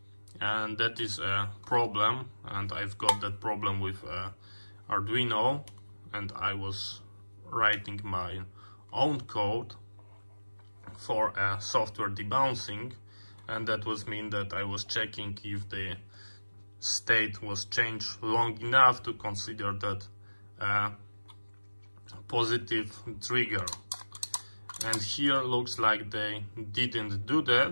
and that is a problem. And I've got that problem with Arduino, and I was writing my own code for a software debouncing, and that was mean that I was checking if the state was changed long enough to consider that positive trigger. And here looks like they didn't do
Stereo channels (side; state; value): both; inverted; correlation -1.00